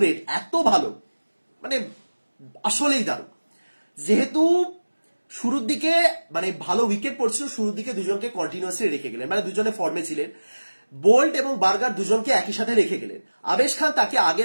এত ভালো, মানে আসলেই দারুণ। যেহেতু শুরুর দিকে মানে ভালো উইকেট পড়ছিল, শুরুর দিকে দুজনকে কন্টিনিউয়াসলি রেখে গেলেন, মানে দুজনে ফর্মে ছিলেন। বোল্ট এবং বার্গার দুজনকে একই সাথে রেখে গেলেন। আবেশ খান তাকে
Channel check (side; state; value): both; inverted; correlation -1.00